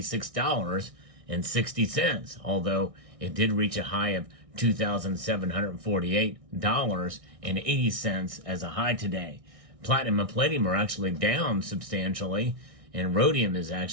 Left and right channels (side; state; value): left; late; 1.6 ms